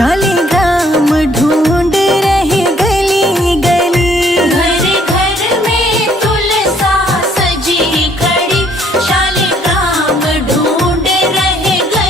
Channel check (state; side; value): normal; both; correlation 0.63